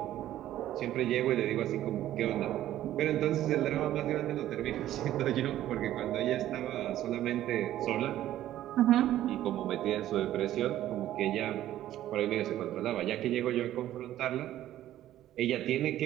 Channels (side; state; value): left; quieter; 13.1 dB